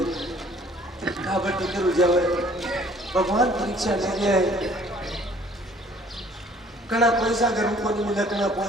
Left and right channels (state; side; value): normal; both; correlation 0.56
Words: कहा बटी कर जाओ। भगवान परीक्षा ले गया है, कड़ा पैसा घर को नहीं मिले, कड़ा